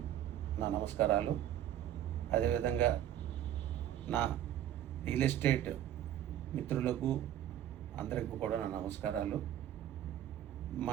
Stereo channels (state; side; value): quieter; left; 11.6 dB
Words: నా నమస్కారాలు. అదేవిధంగా నా రియల్ ఎస్టేట్ మిత్రులకు అందరికీ కూడా నా నమస్కారాలు.